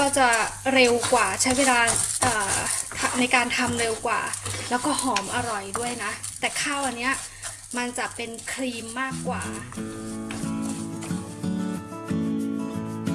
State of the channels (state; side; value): identical; both; correlation 1.00